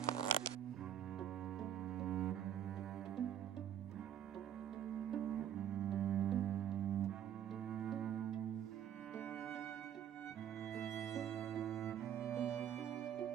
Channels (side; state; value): left; quieter; 9.9 dB